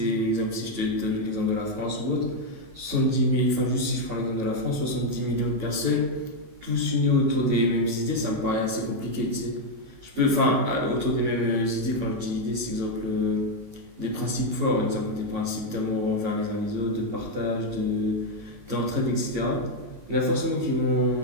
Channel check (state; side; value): late; left; 19 ms